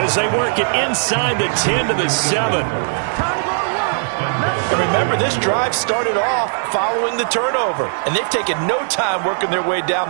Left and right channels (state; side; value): silent; left; digital silence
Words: as they work it inside the 10 to the 7. And remember, this drive started off following the turnover. And they've taken no time working their way down